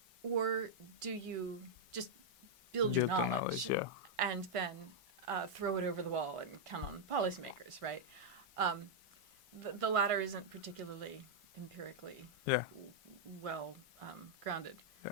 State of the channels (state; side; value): normal; both; correlation -0.04